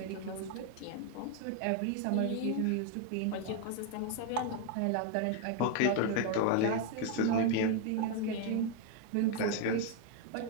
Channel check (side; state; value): both; different; correlation 0.01